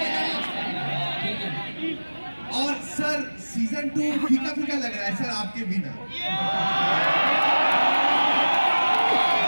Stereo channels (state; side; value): inverted; both; correlation -1.00